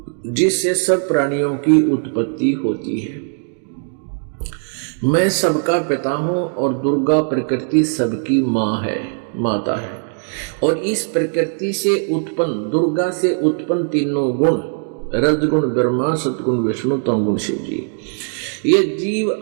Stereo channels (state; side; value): silent; left; 66 dB below the other